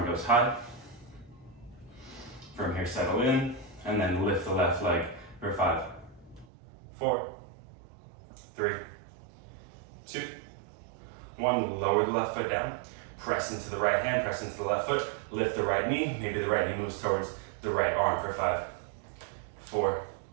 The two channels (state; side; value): drops out; left; at 6.5 s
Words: goes high. From here, settle in. And then lift the left leg for 5, 4, 3, 2, 1. Lower the left foot down. Press into the right hand. Press into the left foot. Lift the right knee. Maybe the right knee moves towards the right arm for 5, 4,